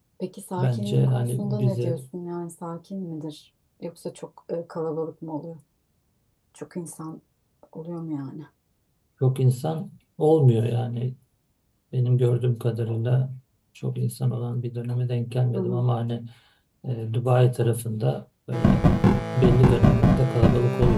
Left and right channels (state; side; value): identical; both; correlation 1.00